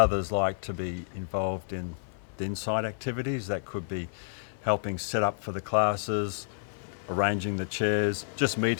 like to be involved in the inside activities. That could be helping set up for the classes, arranging the chairs, just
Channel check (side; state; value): right; silent; digital silence